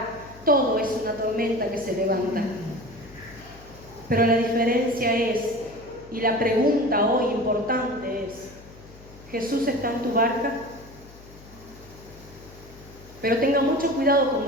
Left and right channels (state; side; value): noise; left; hum, 20 dB below the sound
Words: todo es una tormenta que se levanta. Pero la diferencia es, y la pregunta hoy importante es, ¿Jesús está en tu barca? Pero tenga mucho cuidado